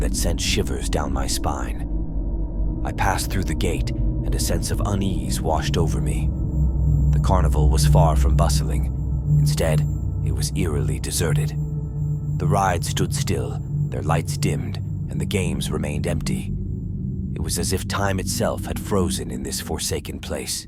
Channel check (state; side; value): identical; both; correlation 1.00